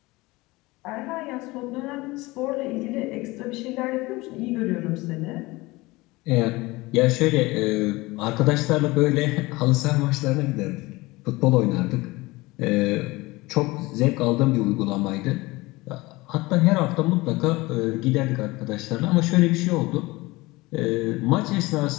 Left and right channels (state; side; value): quieter; right; 21.6 dB